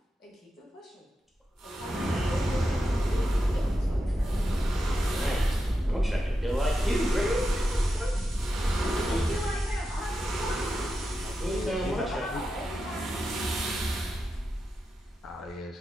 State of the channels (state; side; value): normal; both; correlation 0.89